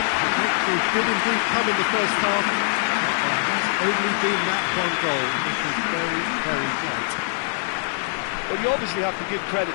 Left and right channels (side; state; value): right; silent; digital silence